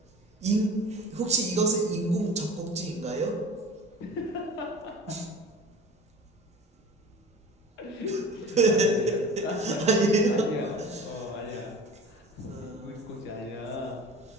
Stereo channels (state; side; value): normal; both; correlation 0.39